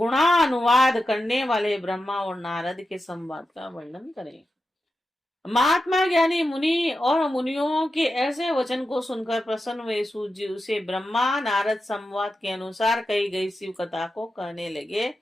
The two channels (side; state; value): both; normal; correlation 0.90